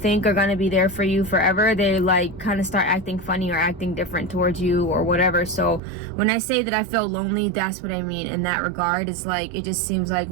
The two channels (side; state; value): left; drops out; at 5.8 s